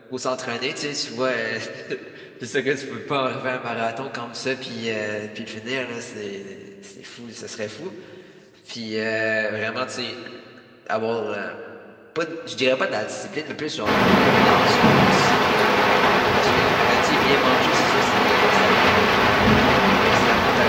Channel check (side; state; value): both; identical; correlation 1.00